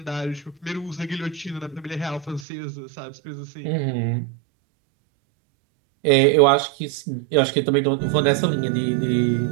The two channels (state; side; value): drops out; left; at 2.5 s